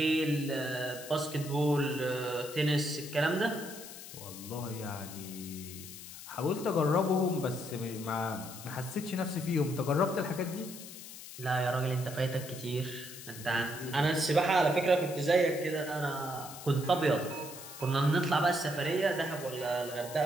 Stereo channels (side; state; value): left; noise; hiss, 13 dB below the sound